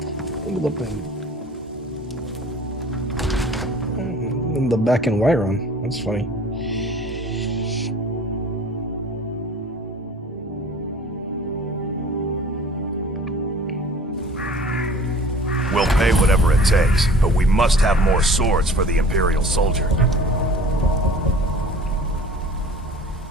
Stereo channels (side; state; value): both; normal; correlation 0.46